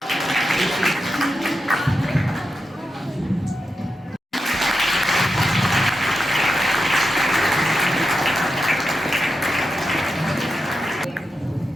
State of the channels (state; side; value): normal; both; correlation 0.88